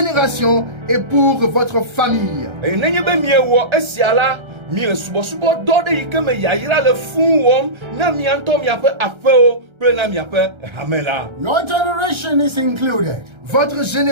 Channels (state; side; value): late; left; 1.3 ms